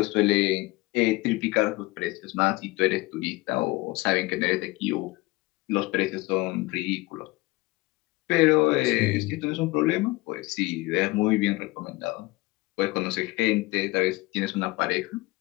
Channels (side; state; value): right; quieter; 22.1 dB